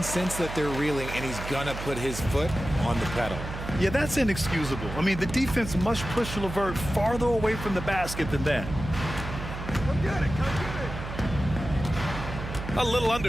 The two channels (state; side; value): noise; right; hum, 8 dB below the sound